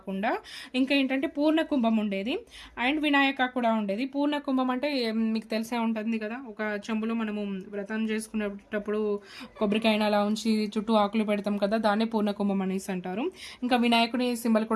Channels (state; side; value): identical; both; correlation 1.00